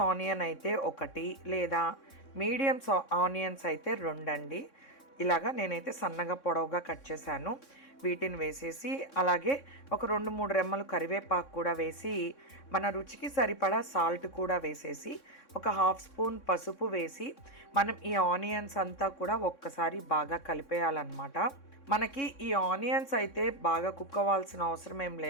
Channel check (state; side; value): late; right; 3.6 ms